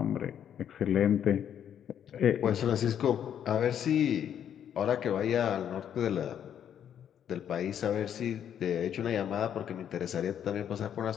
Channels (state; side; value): quieter; right; 9.3 dB